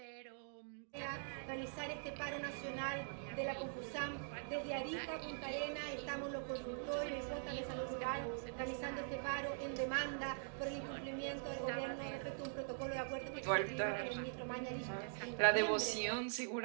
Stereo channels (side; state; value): left; silent; digital silence